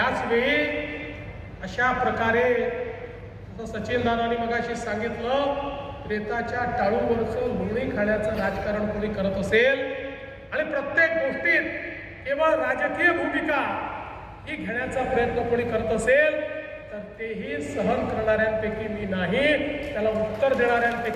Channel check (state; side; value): identical; both; correlation 1.00